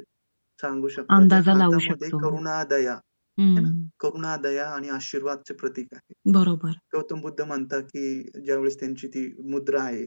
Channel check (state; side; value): inverted; both; correlation -1.00